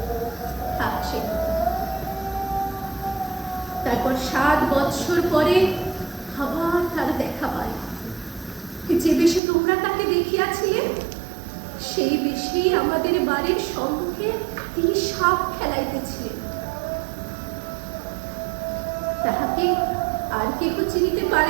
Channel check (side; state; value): left; drops out; at 9.4 s